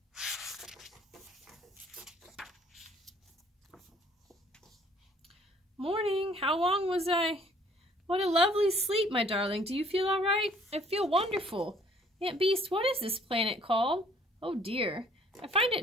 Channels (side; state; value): both; normal; correlation 0.59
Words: Morning. How long was I? What a lovely sleep, my darling. Do you feel all right? I feel wonderful. Aunt Beast, what is this planet called? Oh dear. I find it